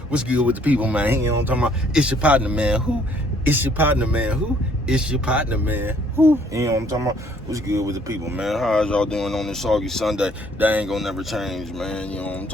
What's good with the people, man? You know what I'm talking about? It's your partner, man. Who? It's your partner, man. Who? It's your partner, man. Who? You know what I'm talking about? What's good with the people, man? How's y'all doing on this soggy Sunday? They ain't gonna never change, man. You know what I'm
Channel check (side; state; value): both; normal; correlation 0.62